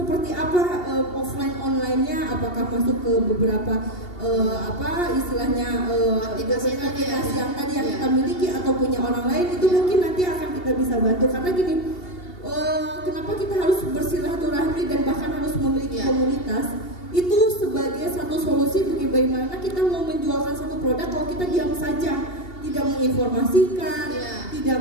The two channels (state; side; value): late; right; 2.8 ms